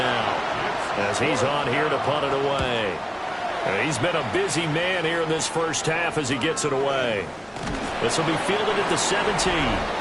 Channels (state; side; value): identical; both; correlation 1.00